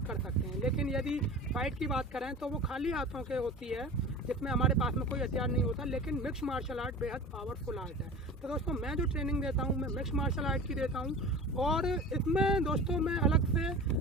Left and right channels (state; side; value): normal; both; correlation 0.35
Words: कर सकते हैं। लेकिन यदि फाइट की बात करें तो वो खाली हाथों के होती है जिसमें हमारे पास में कोई हथियार नहीं होता। लेकिन मिक्स मार्शल आर्ट बेहद पावरफुल आर्ट है। तो दोस्तों मैं जो ट्रेनिंग देता हूँ मैं मिक्स मार्शल आर्ट की देता हूँ और इसमें दोस्तों मैं अलग से